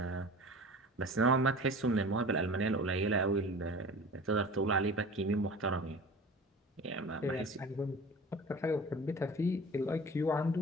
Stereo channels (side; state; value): both; normal; correlation 0.39